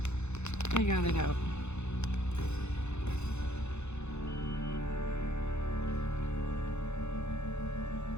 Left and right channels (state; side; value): late; right; 0.82 ms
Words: I got it out.